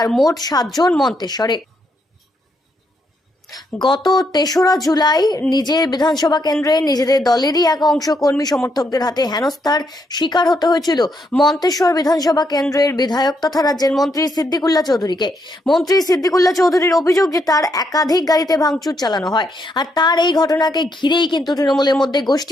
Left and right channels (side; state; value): both; normal; correlation 0.77